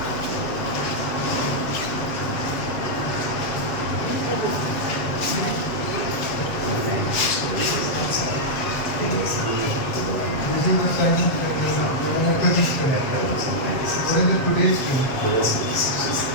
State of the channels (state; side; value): late; right; 7.6 ms